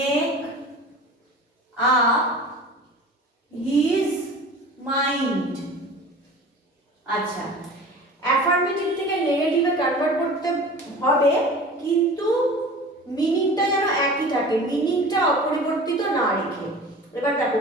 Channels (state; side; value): normal; both; correlation 0.39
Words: up his mind. আচ্ছা, অ্যাফার্মেটিভ থেকে নেগেটিভে কনভার্ট করতে হবে, কিন্তু মিনিংটা যেন একই থাকে, মিনিংটা অপরিবর্তিত না রেখে। এবার দেখো